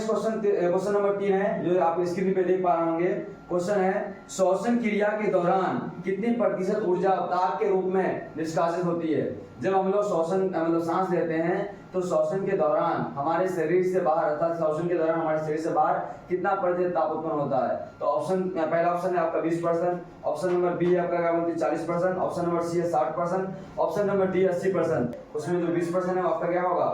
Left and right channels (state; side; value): identical; both; correlation 1.00